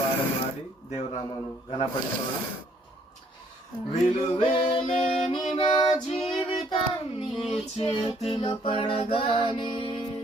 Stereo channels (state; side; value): normal; both; correlation 0.64